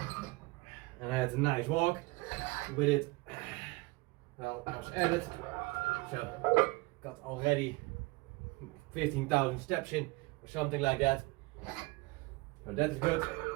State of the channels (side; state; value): left; quieter; 23.7 dB